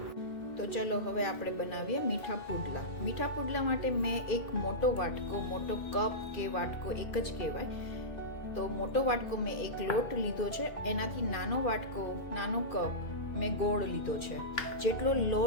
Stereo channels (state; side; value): late; right; 2.4 ms